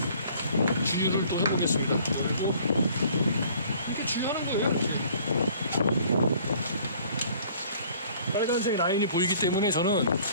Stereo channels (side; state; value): both; inverted; correlation -0.55